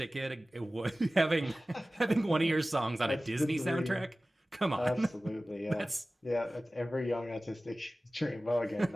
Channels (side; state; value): both; normal; correlation 0.97